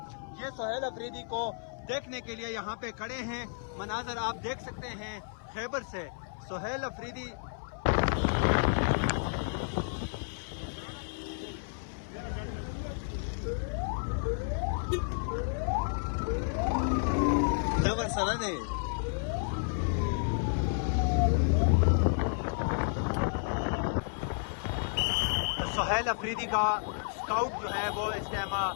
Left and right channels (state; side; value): silent; right; 57 dB below the other